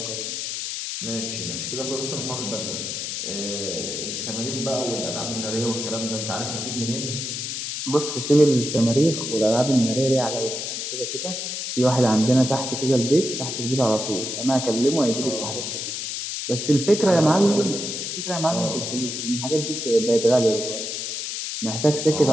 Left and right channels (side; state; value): left; noise; hiss, 4 dB below the sound